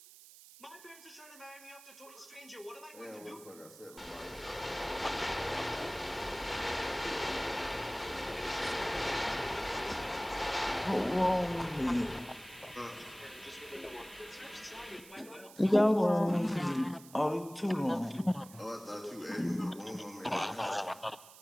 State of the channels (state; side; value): noise; right; hiss, 19 dB below the sound